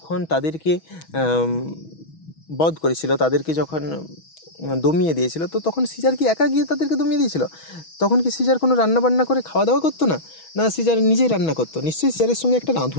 তাদেরকে বধ করেছিল, তাদেরকে যখন দমিয়ে দিয়েছিল, তো তখন সিজার কি একা গিয়ে তাদেরকে দমিয়ে দিয়েছিল? তখন কি সিজার কোনো রান্নাবান্না করে খাওয়া দাওয়া করতো না? না, সিজার নিজেই রান্না করতো। নিশ্চয়ই সিজারের সঙ্গে একটা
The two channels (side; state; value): right; late; 6.2 ms